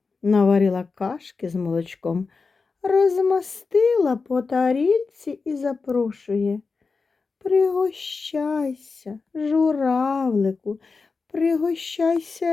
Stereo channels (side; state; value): right; quieter; 4.5 dB